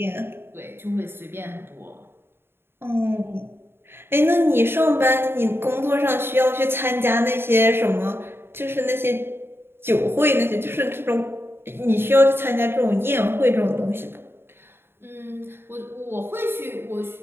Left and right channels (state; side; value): late; left; 0.11 ms